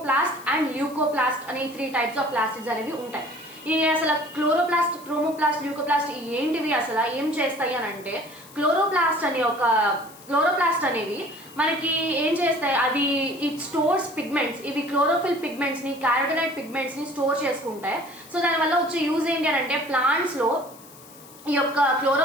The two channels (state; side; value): noise; left; hiss, 21 dB below the sound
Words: అండ్ ల్యూకోప్లాస్ట్ అనే 3 టైప్స్ ఆఫ్ ప్లాస్టిడ్స్ అనేవి ఉంటాయి. ఈ అసలు క్లోరోప్లాస్ట్, క్రోమోప్లాస్ట్, ల్యూకోప్లాస్ట్ ఏంటివి, అసలు ఏం చేస్తాయి అని అంటే, క్లోరోప్లాస్ట్ అనేవి మనకి ఏం చేస్తాయి, అవి ఇట్ స్టోర్స్ పిగ్మెంట్స్. ఇవి క్లోరోఫిల్ పిగ్మెంట్స్ ని, క్యారోటినాయిడ్ పిగ్మెంట్స్ ని స్టోర్ చేసుకుంటాయి. సో దానివల్ల వచ్చే యూజ్ ఏంటి అని అంటే, ప్లాంట్స్ లో ఈ యొక్క